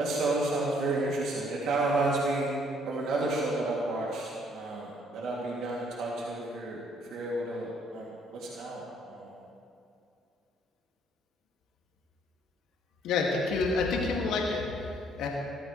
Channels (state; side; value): normal; both; correlation 0.65